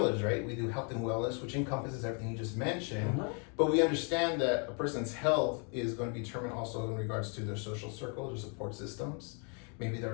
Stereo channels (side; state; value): right; quieter; 38.6 dB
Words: right? We do health and wellness, which encompasses everything you just mentioned. But we understand that a person's health is going to be determined also in regards to their social circle, their support systems. Maybe